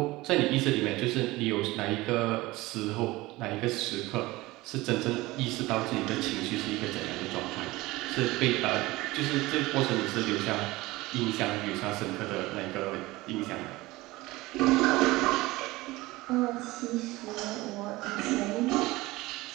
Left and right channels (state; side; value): quieter; left; 19.9 dB